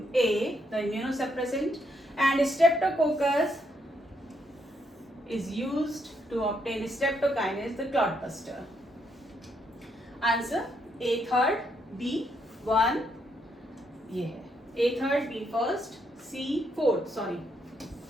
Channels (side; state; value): both; normal; correlation 0.76